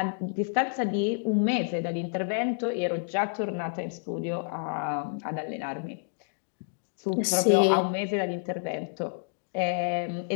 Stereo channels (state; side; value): silent; right; digital silence